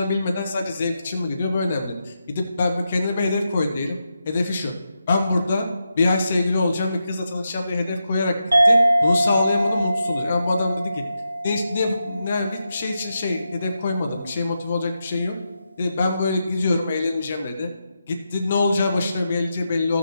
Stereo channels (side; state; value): both; inverted; correlation -0.87